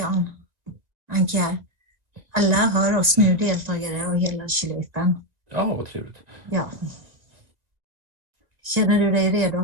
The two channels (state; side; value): late; left; 2.0 ms